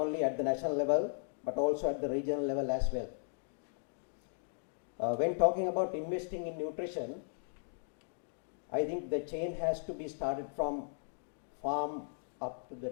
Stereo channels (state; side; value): silent; right; digital silence